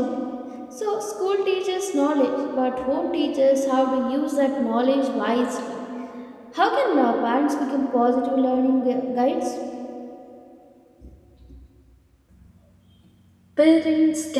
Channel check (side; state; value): both; identical; correlation 1.00